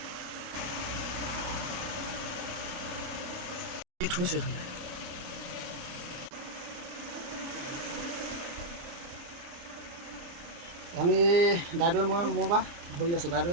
থৈছে ধুনীয়া। আমি দাইদেউৱে মই বা ধৰি আছোঁ।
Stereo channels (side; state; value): left; late; 29 ms